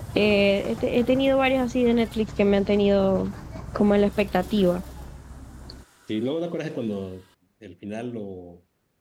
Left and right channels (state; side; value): identical; both; correlation 1.00